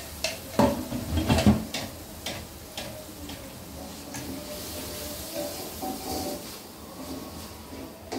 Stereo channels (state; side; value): identical; both; correlation 1.00